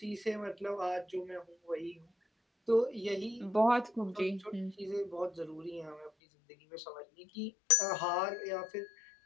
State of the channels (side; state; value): right; drops out; at 6.1 s